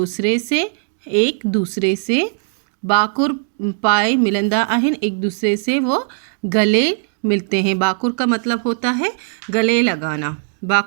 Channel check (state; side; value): silent; left; digital silence